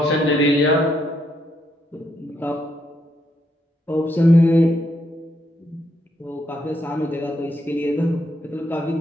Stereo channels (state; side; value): normal; both; correlation 0.77